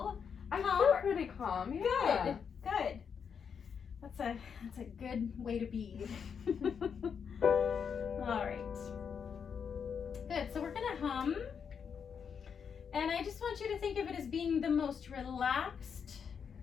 I calm? feel pretty calm. Yeah. Good. That's a good way to be. All right. Good. So we're gonna hum, and I just want you to think of it as being the most relaxed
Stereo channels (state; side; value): quieter; right; 6.8 dB